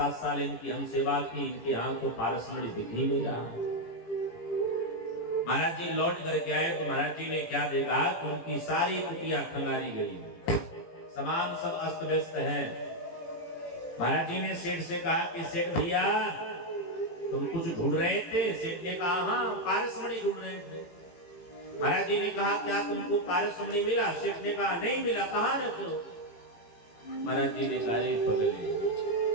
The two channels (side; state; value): right; late; 18 ms